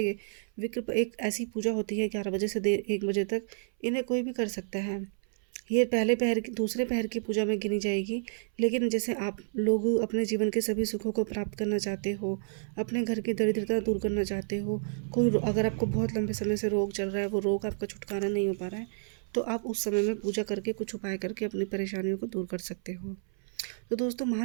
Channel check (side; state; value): left; silent; 58 dB below the other